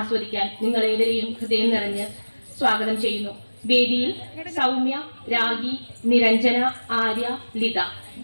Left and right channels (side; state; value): both; inverted; correlation -1.00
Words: നിങ്ങളേവരെയും ഹൃദയം നിറഞ്ഞ് സ്വാഗതം ചെയ്യുന്നു. വേദിയിൽ സൗമ്യ, രാഗി, നിരഞ്ജന, ആര്യ, ലിത.